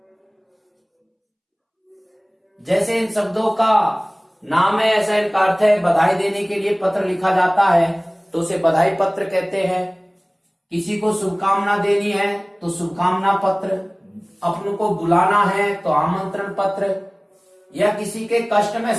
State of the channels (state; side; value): identical; both; correlation 1.00